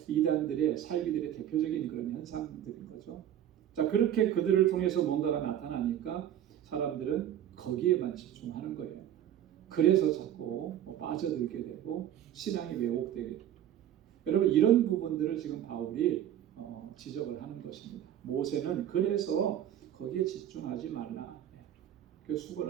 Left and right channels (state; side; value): quieter; left; 10.9 dB